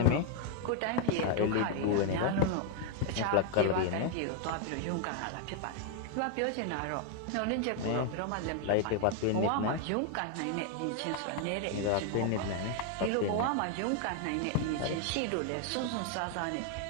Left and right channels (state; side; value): different; both; correlation 0.00